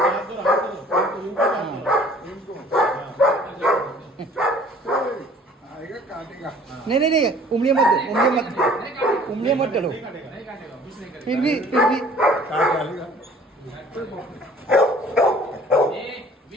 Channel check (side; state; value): both; normal; correlation 0.52